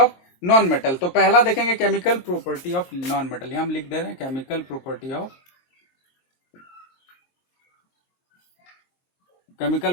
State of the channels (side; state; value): right; late; 23 ms